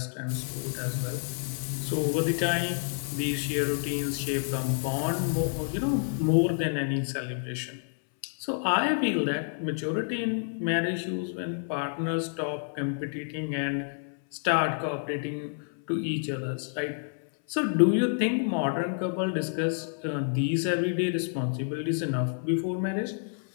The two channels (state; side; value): silent; right; 59 dB below the other